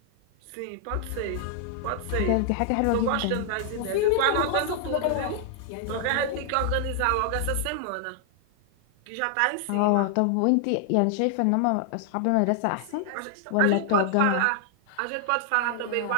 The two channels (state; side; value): different; both; correlation 0.00